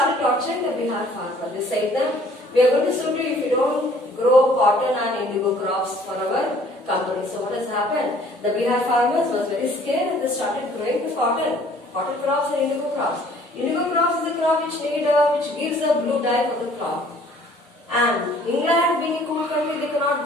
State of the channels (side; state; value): both; normal; correlation 0.56